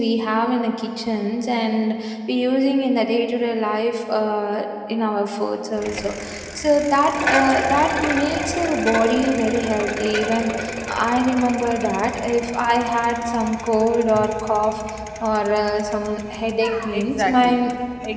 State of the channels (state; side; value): identical; both; correlation 1.00